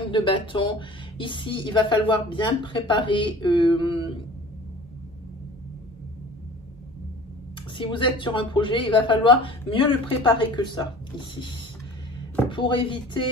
de bâton, ici, il va falloir bien préparer. Si vous êtes sur un projet, il va falloir mieux le préparer que ça, ici, pour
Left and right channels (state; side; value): normal; both; correlation 0.44